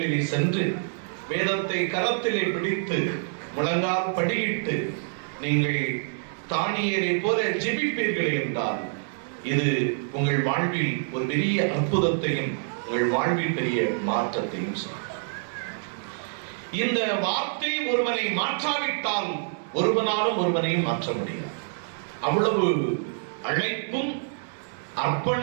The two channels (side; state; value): left; silent; digital silence